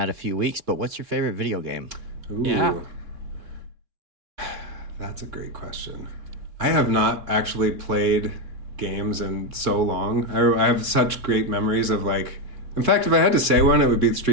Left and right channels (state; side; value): late; left; 3.4 ms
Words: a few weeks, but what's your favorite video game? Ooh. Yeah. That's a great question. I have not actually played games in so long. I have such great memories of like... In fact, if I had to say one, it would be